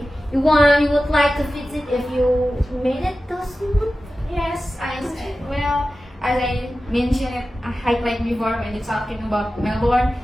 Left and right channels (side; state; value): both; normal; correlation 0.94